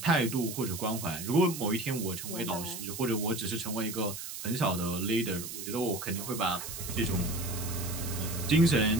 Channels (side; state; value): right; noise; hiss, 8 dB below the sound